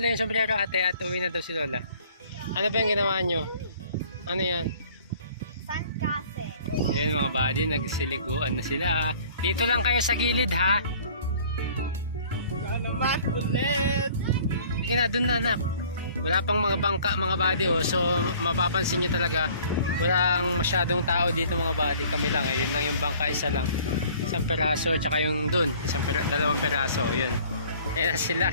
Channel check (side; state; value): both; inverted; correlation -0.53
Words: yung sombrero ate at uwi na daw si Lola. Ano ba yung ginawa nyo? Ano yan? Sandcastle. Yan mga buddy, nagsiliguan na sila. Dito lang kayo sa gilid ha. Naman ulit. Sige na, dun na anak. Wala pang mga bangka mga buddy oh. So mapapansin nyo talaga walang masyadong tao dito mga buddy. Kami lang eh. Yun lang yung bangka, isa lang. Isang peraso tsaka yung dun. Dalawang peraso. Yun. Ayan